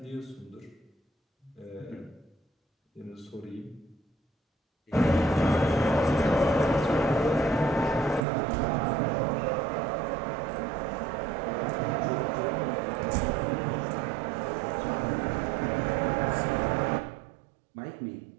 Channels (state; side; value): drops out; left; at 8.2 s